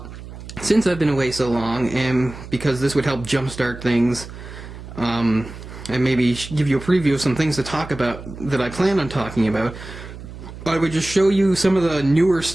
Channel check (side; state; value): right; noise; hum, 13 dB below the sound